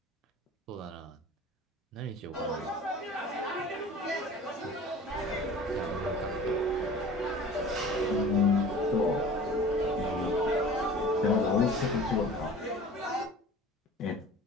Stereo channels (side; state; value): both; normal; correlation 0.42